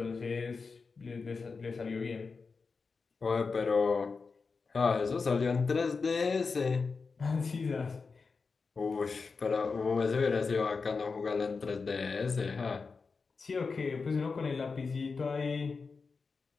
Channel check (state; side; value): quieter; right; 4.7 dB